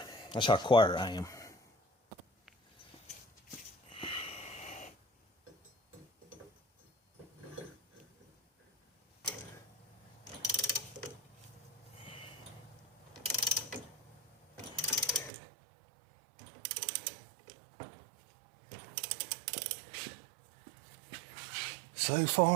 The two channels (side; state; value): left; drops out; at 15.3 s